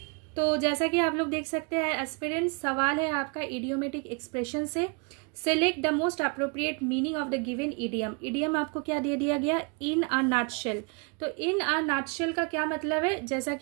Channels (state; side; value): quieter; left; 33.9 dB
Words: तो जैसा कि आप लोग देख सकते हैं एस्पिरेंट्स, सवाल है आपका इडियोमेटिक एक्सप्रेशन से, select the most appropriate meaning of the given idiom. Idiom आपको क्या दे दिया गया, इन अ नटशेल, तो इन अ नटशेल का क्या मतलब है, जैसा